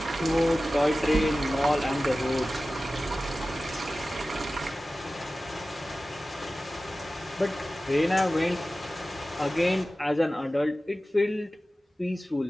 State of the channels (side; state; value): both; normal; correlation 0.96